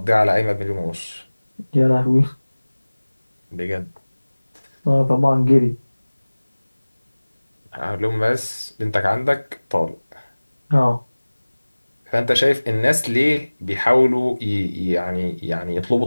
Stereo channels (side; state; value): both; inverted; correlation -1.00